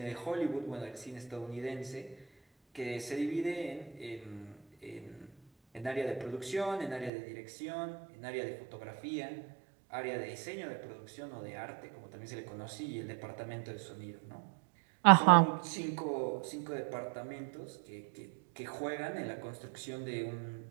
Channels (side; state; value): left; drops out; at 7.1 s